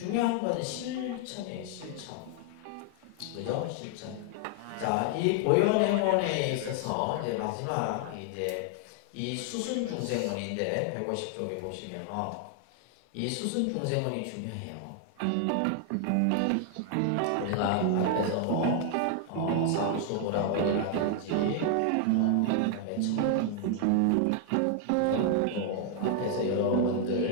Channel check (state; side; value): different; both; correlation 0.00